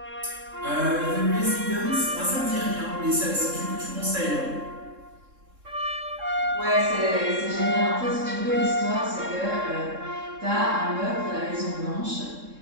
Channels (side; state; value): left; late; 3.7 ms